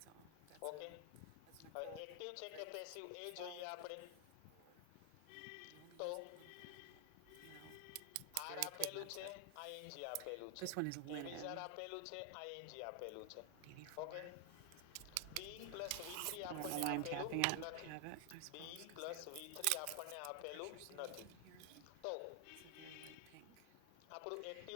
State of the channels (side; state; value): both; different; correlation 0.00